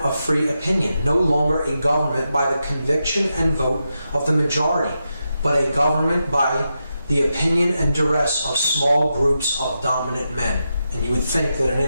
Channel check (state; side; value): inverted; both; correlation -0.87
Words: free opinion, no longer a government by the conviction and vote of the majority, but a government by the opinion and duress of small groups of dominant men. And you would think that an